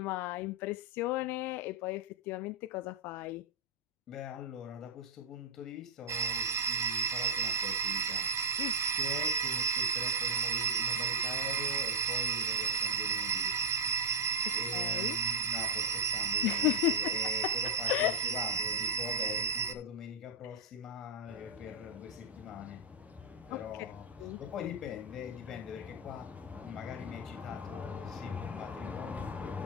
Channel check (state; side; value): normal; both; correlation -0.09